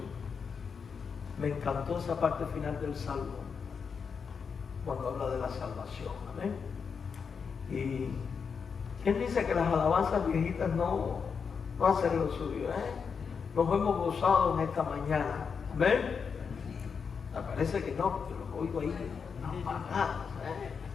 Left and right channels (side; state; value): right; quieter; 6.0 dB